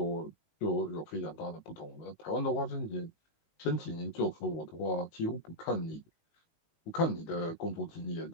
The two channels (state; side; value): late; right; 19 ms